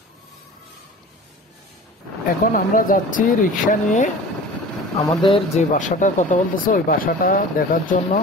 এখন আমরা যাচ্ছি রিক্সা নিয়ে আমাদের যে বাসাটার কথা বলতেছে ওই বাসাটা দেখার জন্য।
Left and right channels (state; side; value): normal; both; correlation 0.39